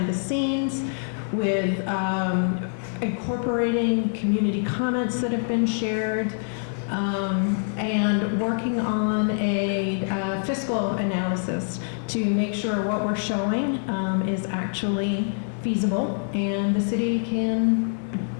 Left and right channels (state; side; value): silent; right; digital silence